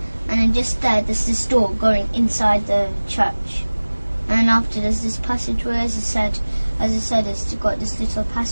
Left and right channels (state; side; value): inverted; both; correlation -1.00